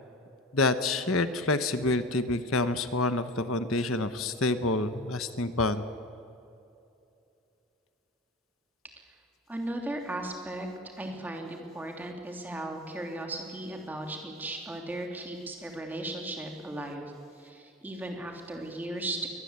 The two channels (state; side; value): normal; both; correlation 0.31